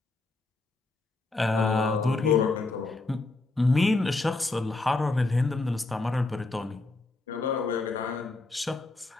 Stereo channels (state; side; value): quieter; right; 3.3 dB